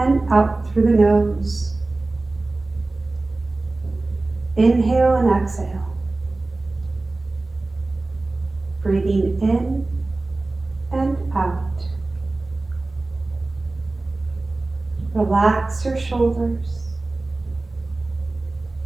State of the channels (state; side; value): quieter; left; 3.1 dB